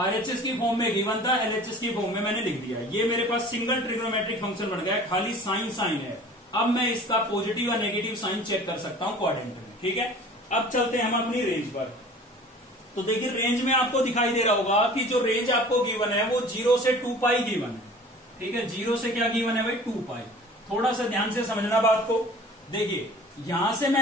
की फॉर्म में गिवन था, LHS की फॉर्म में मैंने लिख दिया है। ये मेरे पास सिंगल ट्रिग्नोमेट्रिक फंक्शन बन गया है, खाली साइन साइन है। अब मैं इसका पॉजिटिव और नेगेटिव साइन चेक कर सकता हूं क्वाड्रेंट में। ठीक है, अब चलते हैं हम अपनी रेंज पर। तो देखिए रेंज में आपको दिखाई दे रहा होगा कि जो रेंज आपको गिवन है वो 0 से 2π गिवन है। ठीक है, 0 से क्या गिवन है भाई, 2π। थोड़ा सा ध्यान से समझना बात को। देखिए यहां से मैं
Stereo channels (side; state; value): both; normal; correlation 0.44